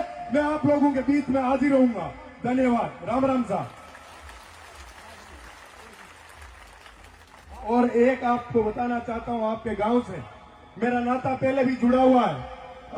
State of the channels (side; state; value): both; identical; correlation 1.00